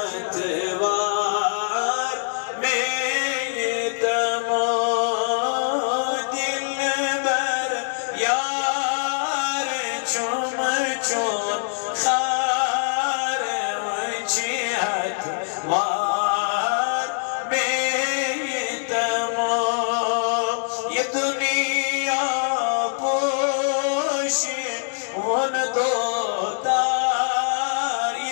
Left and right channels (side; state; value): right; silent; digital silence